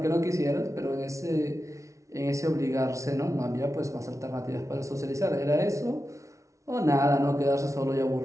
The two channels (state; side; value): late; left; 0.15 ms